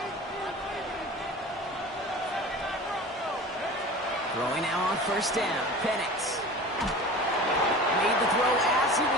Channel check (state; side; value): normal; both; correlation 0.37